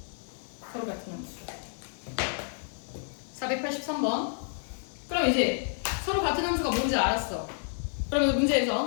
서로 같은 함수. 483번. 그럼 이제 서로 같은 함수가 뭔지 알았어. 그러면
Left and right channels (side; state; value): right; silent; digital silence